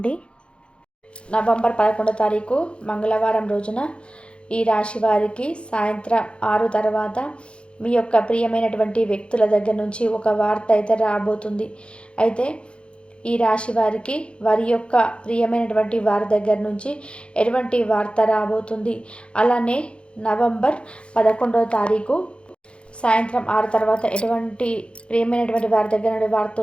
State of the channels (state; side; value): late; right; 0.057 ms